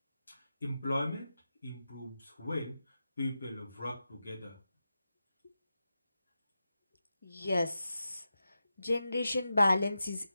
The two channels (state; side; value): inverted; both; correlation -0.91